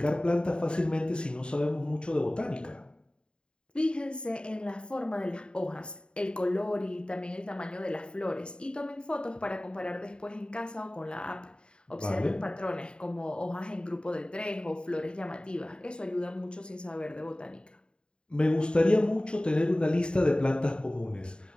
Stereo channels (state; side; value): late; right; 0.051 ms